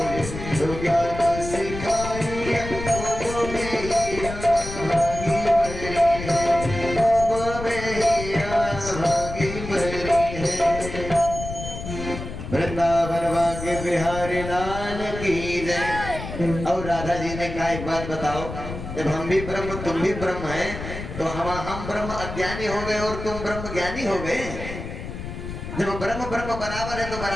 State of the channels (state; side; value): noise; left; rumble, 8 dB below the sound